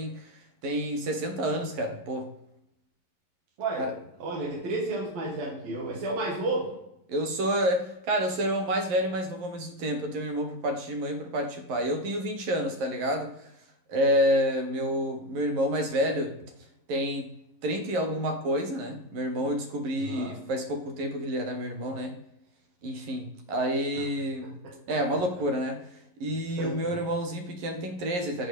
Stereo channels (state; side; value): late; left; 11 ms